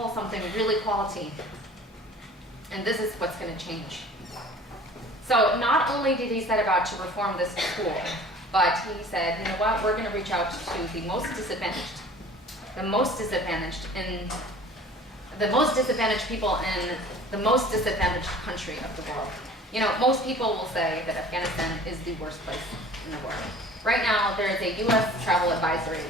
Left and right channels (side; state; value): both; normal; correlation 0.46